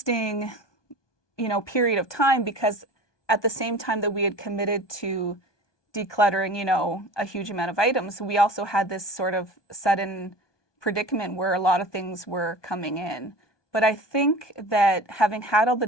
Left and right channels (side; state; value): right; late; 1.2 ms